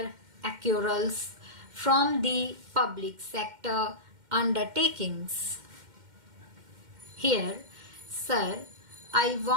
accruals from the public sector undertakings. Here, sir, I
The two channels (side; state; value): left; late; 2.1 ms